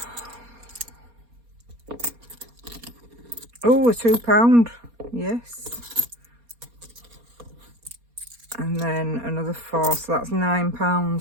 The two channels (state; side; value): late; left; 4.2 ms